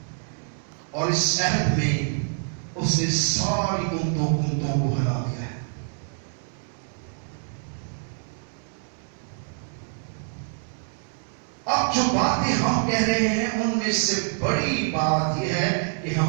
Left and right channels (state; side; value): silent; left; 61 dB below the other